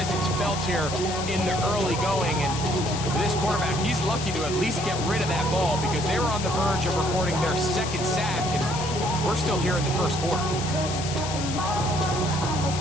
felt here in the early going. And for this quarterback, he's lucky to at least get rid of that ball because they were on the verge of recording their 2nd sack, and we're still here in the 1st quarter.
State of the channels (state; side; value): noise; left; hiss, 7 dB below the sound